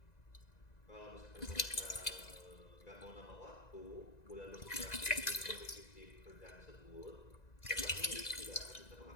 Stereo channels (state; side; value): late; right; 1.9 ms